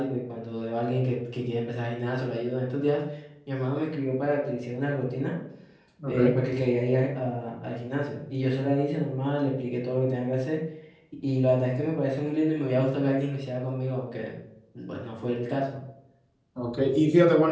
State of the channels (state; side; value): identical; both; correlation 1.00